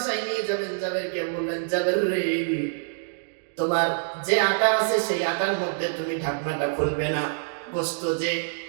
নিয়ে যাবেন। জাবেরকে বললেন, জাবের রে, তোমার যে আটা আছে সেই আটার মধ্যে তুমি ঢাকনাটা খুলবে না, গোশত যে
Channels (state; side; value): silent; left; digital silence